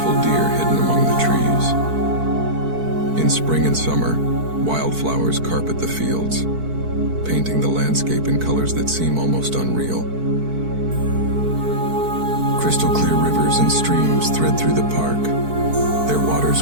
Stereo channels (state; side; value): late; left; 4.6 ms